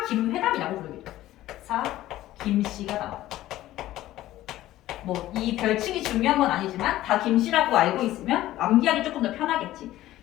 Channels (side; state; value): right; quieter; 14.9 dB